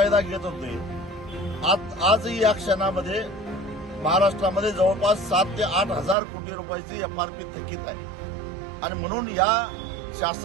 घेत होते। आजही या क्षणामध्ये महाराष्ट्रामध्ये जवळपास 7 ते 8 हजार कोटी रुपयाची एफआरपी थकीत आहे आणि म्हणून या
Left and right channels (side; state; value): left; drops out; at 6.2 s